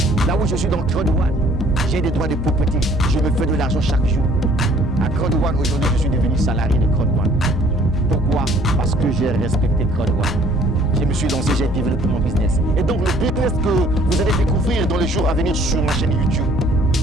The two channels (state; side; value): normal; both; correlation 0.58